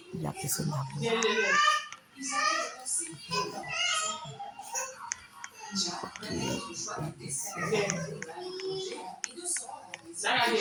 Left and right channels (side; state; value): both; identical; correlation 1.00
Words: il y a personne d'amour.